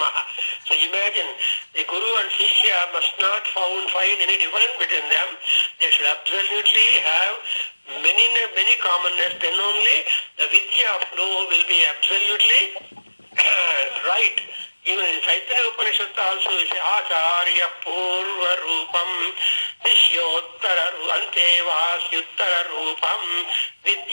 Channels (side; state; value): both; inverted; correlation -1.00